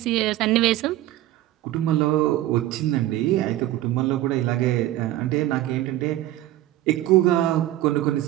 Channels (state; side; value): quieter; left; 14.7 dB